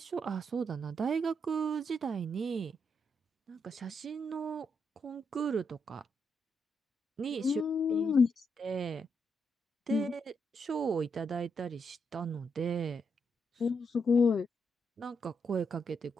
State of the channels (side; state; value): both; normal; correlation 0.80